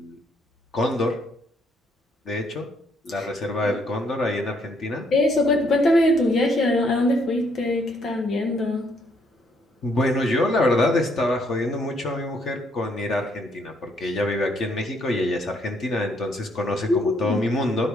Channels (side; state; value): both; normal; correlation 0.70